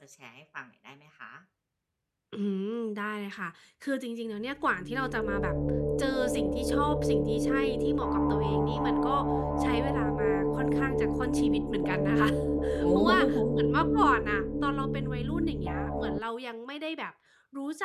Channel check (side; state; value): both; identical; correlation 1.00